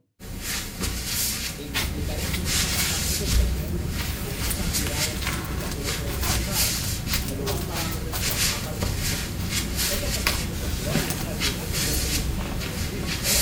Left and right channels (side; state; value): both; identical; correlation 1.00